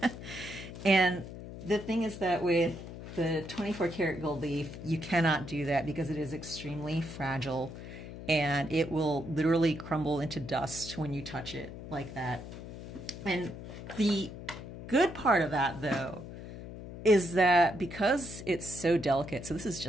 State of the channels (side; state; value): left; noise; hum, 11 dB below the sound